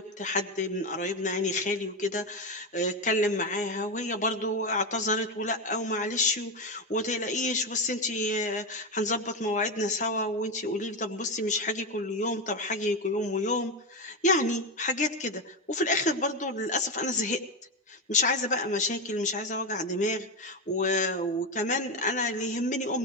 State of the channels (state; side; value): normal; both; correlation 0.12